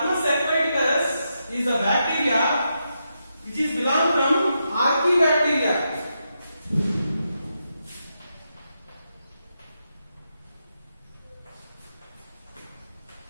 aquaticus is a bacteria which is belong from Archaebacteria.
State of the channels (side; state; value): both; inverted; correlation -0.84